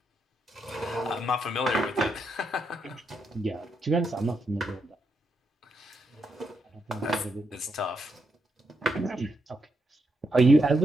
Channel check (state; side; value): normal; both; correlation 0.81